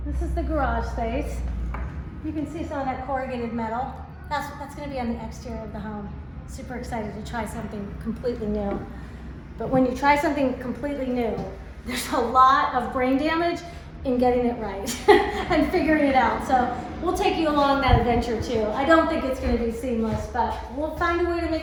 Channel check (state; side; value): identical; both; correlation 1.00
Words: this is the garage space. You can see some of that corrugated metal. That's going to be on the exterior of the home. Super excited to try something completely new. But when you try something completely new, there's a lot of brain damage in getting it right and figuring it out. So we'll take you along that adventure too. I don't think it's going to be seamless, but we'll find a way to